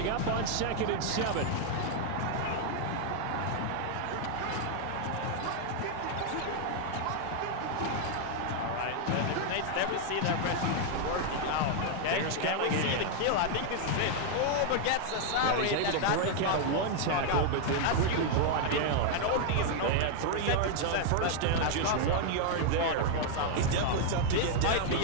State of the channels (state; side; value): different; both; correlation 0.00